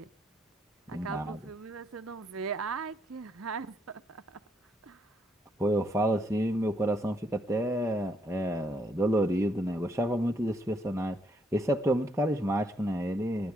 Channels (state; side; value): normal; both; correlation 0.74